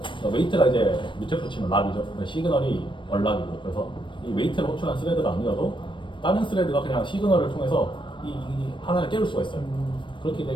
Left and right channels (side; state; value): right; late; 0.24 ms